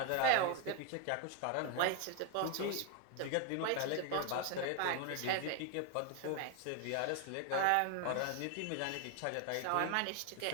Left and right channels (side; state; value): both; different; correlation 0.01